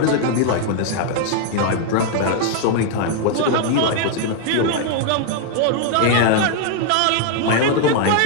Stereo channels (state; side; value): different; both; correlation 0.00